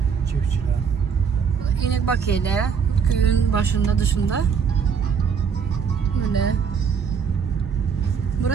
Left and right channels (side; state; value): left; quieter; 6.5 dB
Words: Çiftçiler. İnek bakıyla köyün başında dışında. Böyle.